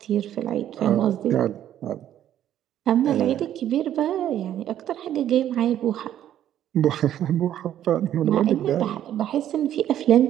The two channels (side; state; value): left; quieter; 11.3 dB